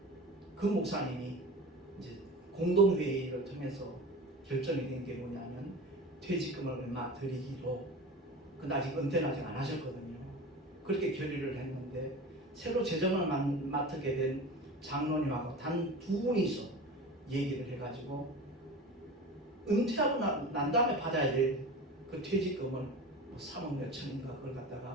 그 목사님이 이제 공동회의를 통해서 결정이 된 게 뭐냐면 퇴직금을 얼마 드리기로. 근데 아직 은퇴는 아직 안 하셨거든요. 그렇게 결의를 했는데 새로 재정을 맡게 된 장로님하고 단 두 분이서 얘기를 해가지고 은퇴하고 난 다음에 받아야 될 그 퇴직금을 3억 몇 천인가 그걸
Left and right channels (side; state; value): both; normal; correlation 0.33